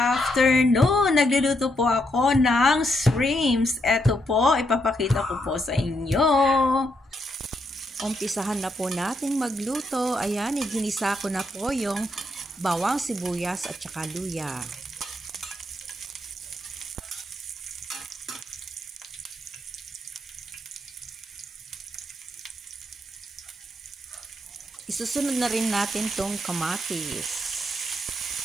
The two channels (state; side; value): normal; both; correlation 0.78